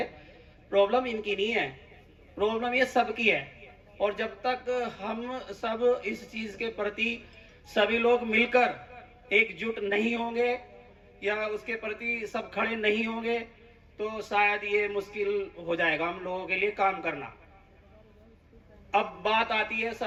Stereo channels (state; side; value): identical; both; correlation 1.00